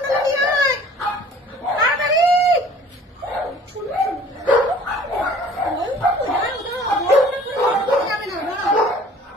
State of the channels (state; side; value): normal; both; correlation 0.50